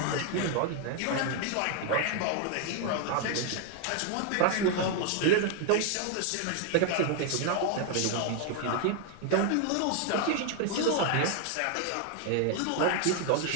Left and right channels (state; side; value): different; both; correlation 0.00